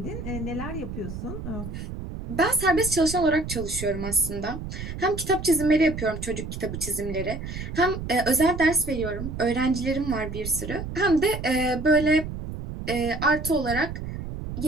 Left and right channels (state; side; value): noise; right; rumble, 8 dB below the sound